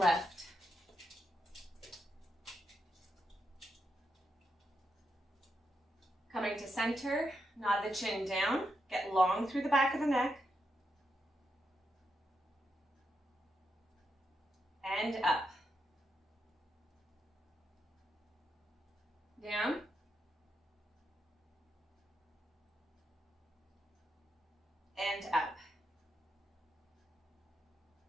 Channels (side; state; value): both; normal; correlation 0.83